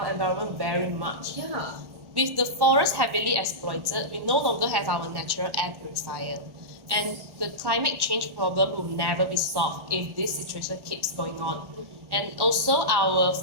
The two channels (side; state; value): left; late; 1.4 ms